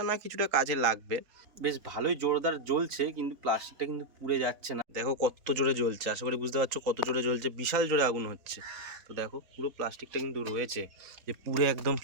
না কিছুটা কাজে লাগবে। বেশ ভালোই জোরদার জ্বলছে, কিন্তু প্লাস্টিকটা কিন্তু পুড়ে যাচ্ছে না। দেখো কত জোরে জ্বলছে, আশা করি বুঝতে পারছো কত জোরে জ্বলছে, বিশাল জোরে আগুন হচ্ছে। তো দেখো পুরো প্লাস্টিকটা কিন্তু রয়েছে, যে পুরো একদম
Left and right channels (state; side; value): late; left; 3.8 ms